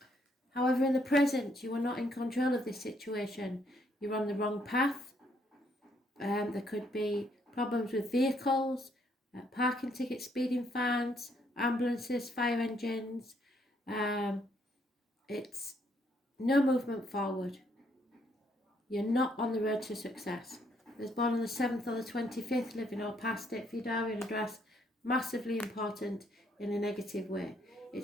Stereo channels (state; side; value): normal; both; correlation 0.70